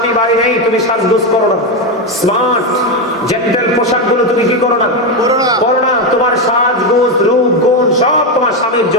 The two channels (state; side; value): normal; both; correlation 0.09